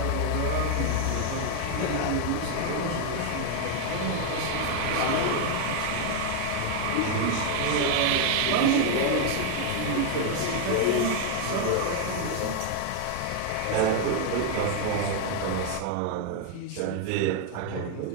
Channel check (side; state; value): both; different; correlation 0.00